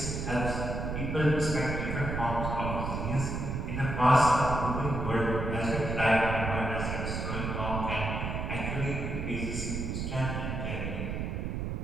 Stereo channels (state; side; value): noise; right; rumble, 3 dB below the sound